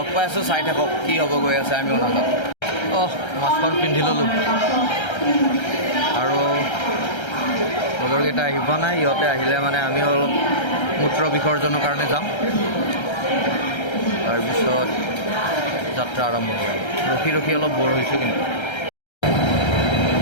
পাই আছোঁ, চাই থাকক কি হ'ব গৈ আছে, আমিও নাজানো। মাস্কখন পিন্ধি ল'লোঁ আৰু লগৰকেইটা আহিব নাই, ইহঁতে আহিলে মানে আমিও অলপ মূত্ৰ বিসৰ্জনৰ কাৰণে যাম, তাৰপিছত যাত্ৰা আৰম্ভ কৰিম। ৰখি অলপ বৰ হৈছোঁ কিন্তু।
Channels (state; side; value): late; right; 1.3 ms